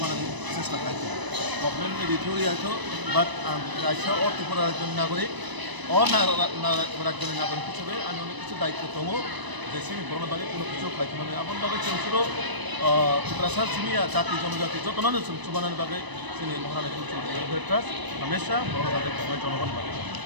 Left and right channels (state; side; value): late; left; 1.0 ms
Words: চেষ্টা खालामो गभर्नमेंट एडिटोरियालखौ बात रायसा और त्रिपुरा रायजोनि नागरिक और रायजोनि नागरिक हिसाबै आंनि अनेक কিছু दायित्व दङ যে सिनि बरनो बागै কোনো কিছু खालामनो आबन बागै जों सुरु त्रिपुरा सिमिया जाति जनजाति जतनानो जों सुबानानि बागै जोंनि महारानी तुलसीबती वेलफेयार ट्रास्ट हमेशा बरनो बागै खालामनाय जनगण बागै